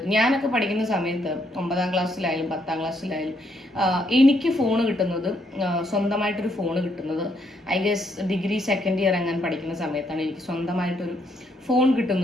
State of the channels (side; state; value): both; normal; correlation 0.73